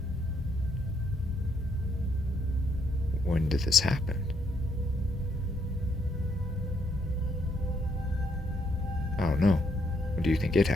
When did this happen? I don't know. When do you think it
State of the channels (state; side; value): normal; both; correlation 0.73